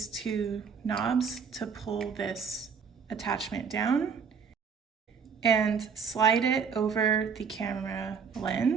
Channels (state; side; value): quieter; left; 6.2 dB